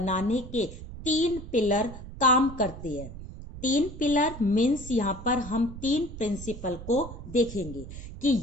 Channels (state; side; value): noise; right; rumble, 12 dB below the sound